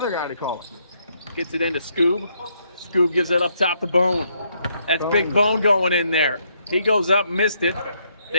guy to call. Gets it into Scoob. Scoob gives it up top to Bone. That's Big Bone going in there. He goes up, missed it.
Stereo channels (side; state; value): both; inverted; correlation -0.73